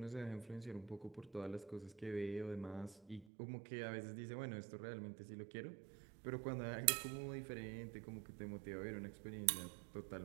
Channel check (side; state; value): left; drops out; at 3.2 s